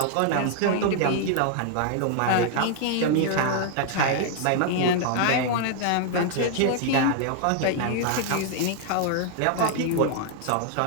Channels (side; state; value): both; different; correlation 0.00